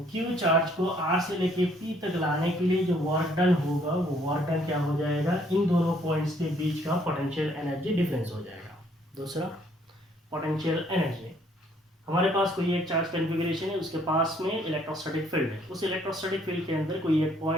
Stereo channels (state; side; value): normal; both; correlation 0.64